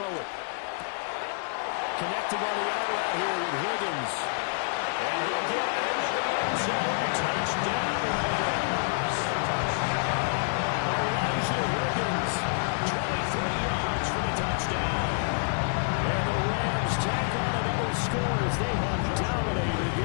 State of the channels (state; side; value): silent; right; digital silence